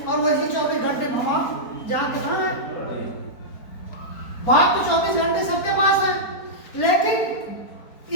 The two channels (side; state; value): right; late; 4.3 ms